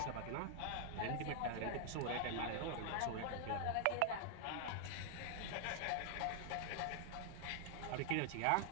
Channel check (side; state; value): both; different; correlation -0.01